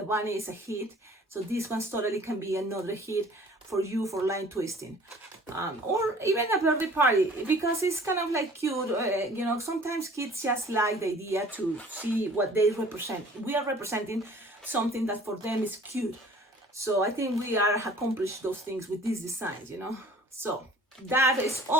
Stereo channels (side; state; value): both; normal; correlation 0.50